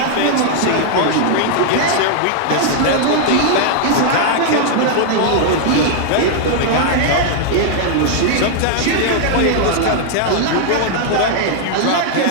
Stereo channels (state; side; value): different; both; correlation -0.01